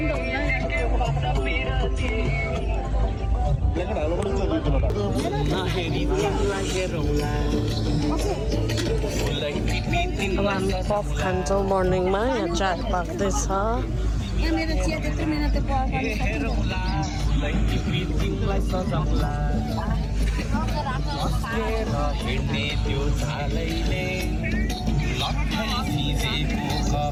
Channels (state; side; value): identical; both; correlation 1.00